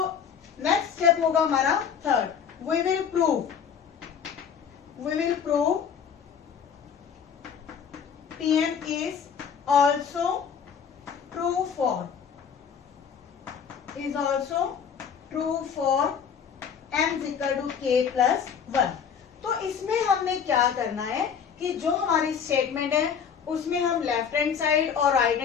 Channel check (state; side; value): quieter; right; 7.2 dB